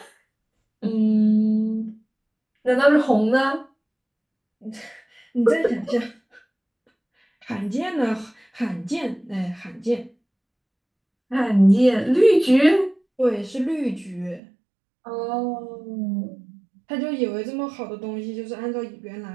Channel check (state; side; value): drops out; left; at 14.4 s